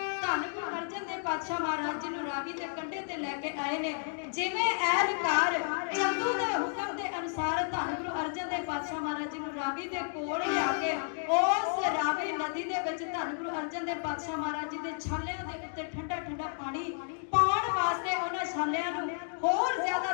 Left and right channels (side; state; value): right; silent; digital silence